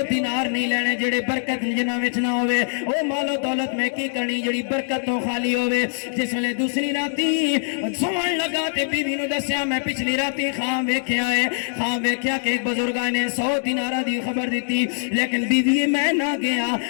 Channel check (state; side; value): silent; right; digital silence